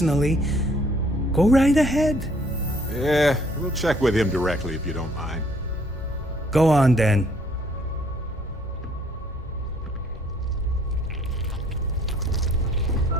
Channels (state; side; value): normal; both; correlation 0.62